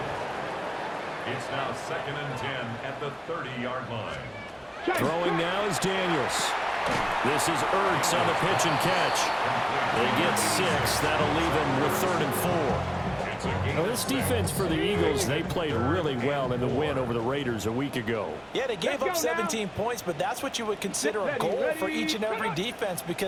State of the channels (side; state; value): both; identical; correlation 1.00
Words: It's now 2nd and 10 at the 30-yard line. Throwing now is Daniels. This is Ertz on the pitch and catch. They get 6. That'll leave him with 3rd and 4. Now this defense for the Eagles, they played really well in the win over the Raiders a week ago. Yeah, they gave up 17 points, but that's what you would consider a goal for each and every defense,